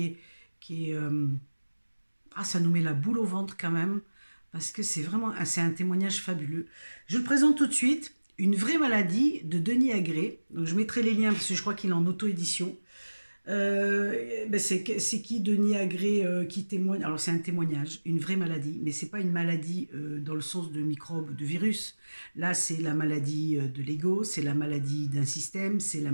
est ah, ça nous met la boule au ventre quand même, parce que c'est vraiment c'est un témoignage fabuleux. Je le présente tout de suite, Une vraie maladie de Denis Agré. Donc je mettrai les liens parce que je crois qu'il est en auto-édition. C'est qui Denis Agré qui témoigne. Alors c'est un témoignage, une vraie maladie, mais c'est pas une maladie dans le sens de microbe, de virus. Là c'est la maladie de l'ego, c'est la maladie d'un système, c'est la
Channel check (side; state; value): both; inverted; correlation -1.00